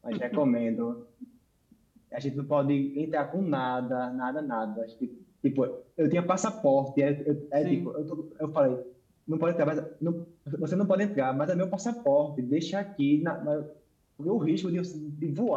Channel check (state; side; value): identical; both; correlation 1.00